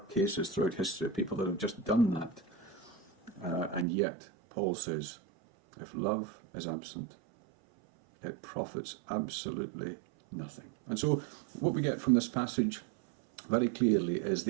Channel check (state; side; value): drops out; left; at 3.9 s